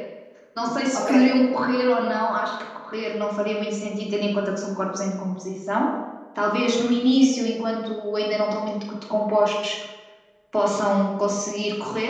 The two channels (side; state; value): both; identical; correlation 1.00